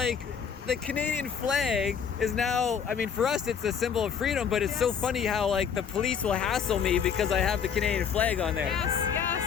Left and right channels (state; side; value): quieter; right; 7.3 dB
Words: the Canadian flag is now. I mean, for us, it's a symbol of freedom. But it's so funny how like the police will hassle me because I have the Canadian flag on there. Yes.